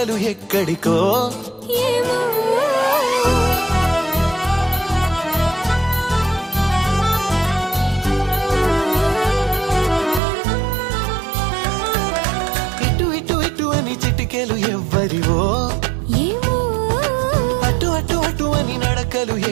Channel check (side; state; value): left; drops out; at 10.2 s